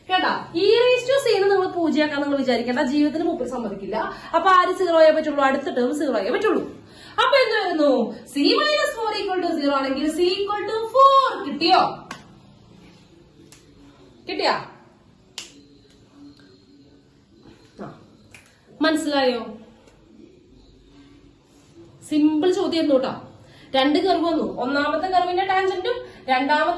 കേട്ടാ. ഇ റേസ് ടു സി നിങ്ങൾ പൂജയാക്കാൻ നിങ്ങൾ വിചാരിക്കേണ്ട, ജീവിതത്തിന് മുമ്പിൽ സമ്മതിക്കില്ല. അപ്പൊ ആര് 0 ആയേ പറ്റുള്ളൂ? അടുത്ത ടേം 0 ആയേ പറ്റുള്ളൂ. അപ്പൊ എന്ത് വരുന്നു? സി -4 ഈക്വൽ ടു 0 ആണെങ്കിൽ സി ഈക്വൽ ടു 4 കിട്ടിയോ? കിട്ടിയാ? മനസ്സിലായോ? സിമ്പിൾ ചോദ്യം കേട്ടോ. രണ്ട് കർവ് വന്നു. ഒന്നാമത്തെ കർവിന്റെ ടാൻജന്റും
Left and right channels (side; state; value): both; identical; correlation 1.00